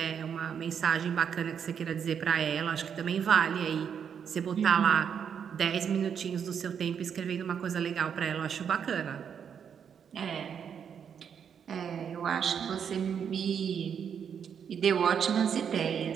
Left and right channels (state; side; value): quieter; left; 7.6 dB